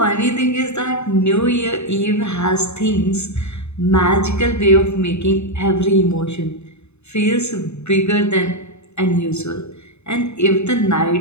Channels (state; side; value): late; right; 0.81 ms